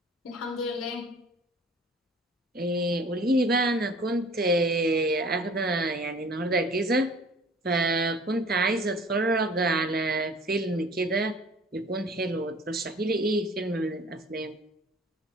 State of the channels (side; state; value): both; normal; correlation 0.49